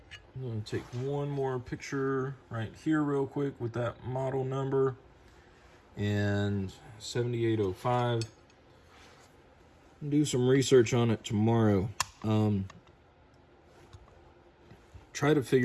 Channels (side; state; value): both; identical; correlation 1.00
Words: I'm going to take one more picture right here real quick with that model number and 7805. Do some research on it tomorrow. Try to